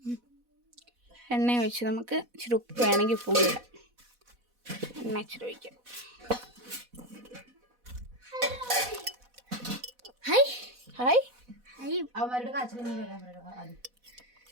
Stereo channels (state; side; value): late; left; 4.1 ms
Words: എണ്ണ ഒഴിച്ച് നമുക്ക് ഇച്ചിരി ഉപ്പ് വേണമെങ്കിൽ ഉപ്പും കൂടി ഇടാം. എണ്ണ ഇച്ചിരി ഒഴിക്കാം. ഹായ്. അവന്മാരുടെ കാച്ചിലൊന്നും വരാൻ